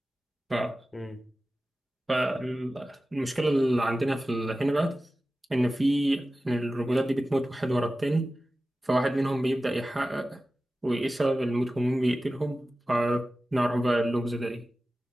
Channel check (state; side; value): normal; both; correlation 0.95